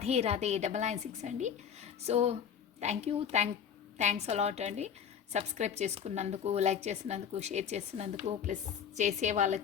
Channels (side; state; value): right; quieter; 8.0 dB